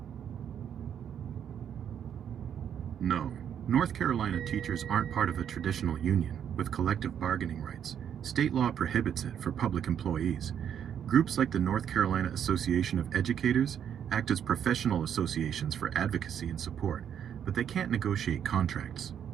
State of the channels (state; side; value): quieter; left; 8.9 dB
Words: No. North Carolina teachers aren't part of a traditional union with collective bargaining rights. State law prohibits it for public employees. Groups like the North Carolina Association of Educators act as professional associations for advocacy and support, but they can't negotiate contracts.